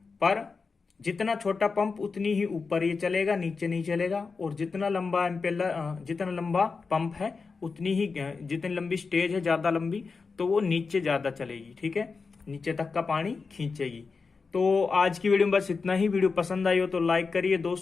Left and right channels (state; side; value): quieter; right; 4.7 dB